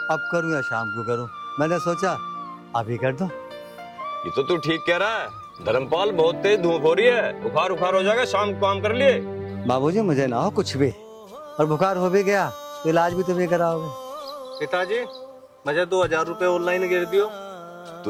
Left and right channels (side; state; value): both; identical; correlation 1.00